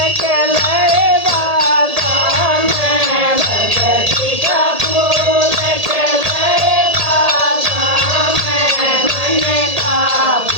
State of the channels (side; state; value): left; late; 1.8 ms